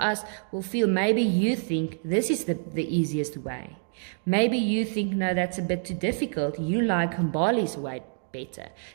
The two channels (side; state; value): left; silent; digital silence